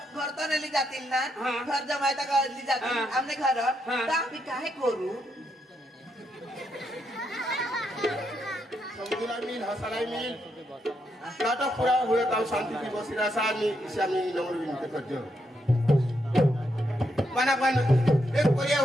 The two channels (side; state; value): both; normal; correlation 0.80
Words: घर तो नेली जातील ना घर जमायता कळली जातील आमने घर तर आम्ही काय करू समझला मिल हसराय मिल नाटक पूरा हुए तब शांति की बसिरा सानी इसामी नंबर विनते करजो माना पण एक पोरिया